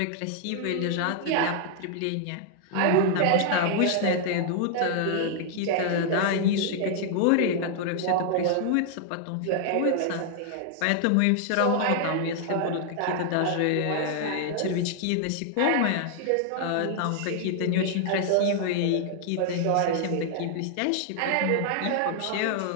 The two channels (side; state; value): both; different; correlation -0.01